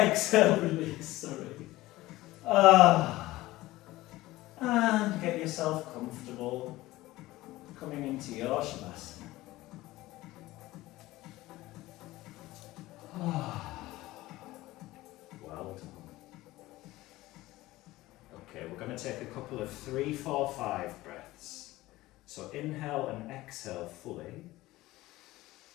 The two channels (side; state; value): right; quieter; 17.9 dB